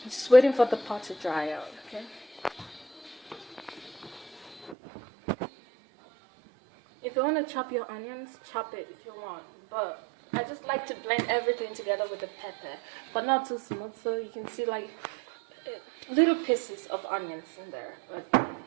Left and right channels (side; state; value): left; drops out; at 4.8 s